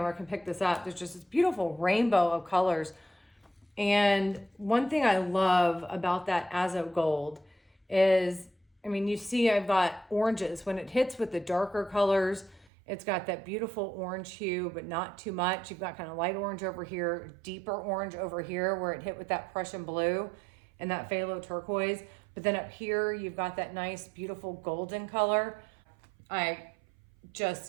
can pick this up. There's just this beautiful rainbow of colors. And one thing I love about that Azo Gold is, I mean, you see I've got oranges. When it hits with the darker colors, it's got that beautiful orange hue, but not too much. You've got kind of light orange over here, deeper orange over here where it hit with that Prussian blue and that phthalo turquoise. But then up here, you've got that nice, beautiful golden color. I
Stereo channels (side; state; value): left; drops out; at 12.7 s